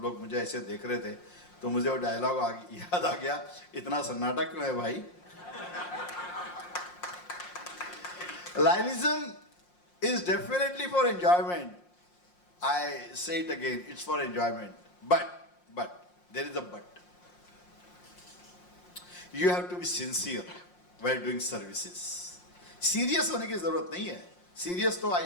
लोग मुझे ऐसे देख रहे थे, तो मुझे वो डायलॉग याद आ गया. इतना सन्नाटा क्यों है भाई? Lionism is definitely for enjoyment. I say it again, it's for enjoyment. But, there is a but. You have to be sincere while doing services. Serious होने की जरूरत नहीं है. Serious तो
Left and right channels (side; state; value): right; late; 5.6 ms